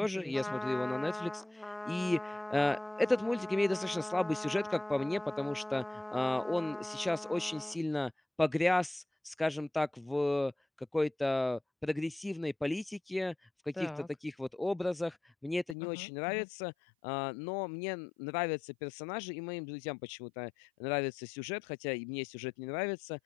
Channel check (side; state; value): right; drops out; at 15.8 s